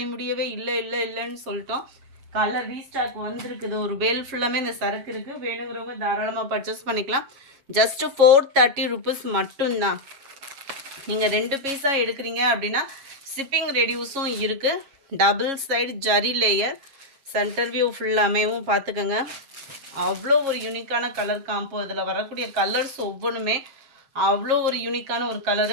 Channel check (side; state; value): left; late; 7.3 ms